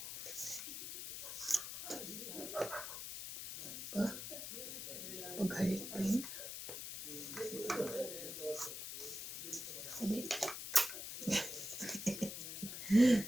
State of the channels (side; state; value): left; noise; hiss, 7 dB below the sound